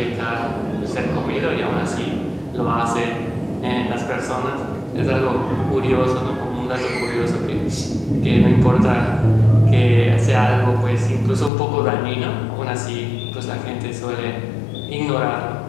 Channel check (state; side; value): drops out; right; at 11.5 s